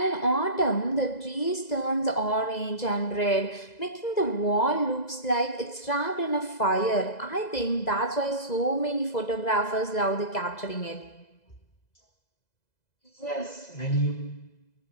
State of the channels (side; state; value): right; late; 2.0 ms